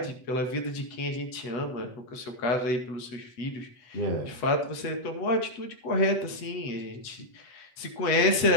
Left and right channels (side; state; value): right; late; 8.3 ms